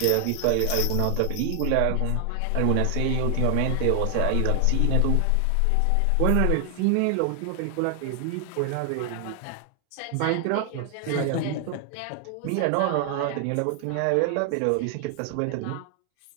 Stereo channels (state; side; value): different; both; correlation 0.00